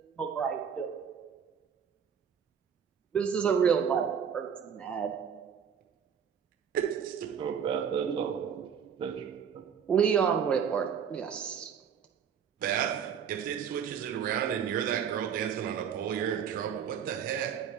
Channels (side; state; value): left; quieter; 7.6 dB